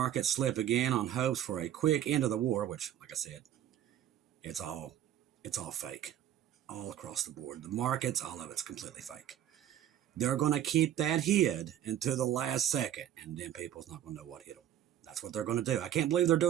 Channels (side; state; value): left; quieter; 11.1 dB